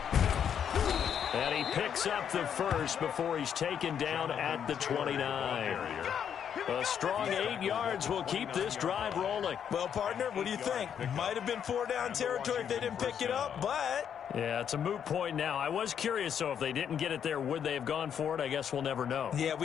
And he picks up the first before he's taken down at the 29. A strong 8 yards will keep this drive rolling. Well, partner, what do you think? Might have been 4-down territory if they didn't pick it up, but... Yeah, it's a moot point now. I was curious, so if they didn't get it there, would they have gone for it? I guess we'll never know. Yeah,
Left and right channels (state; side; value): quieter; right; 8.4 dB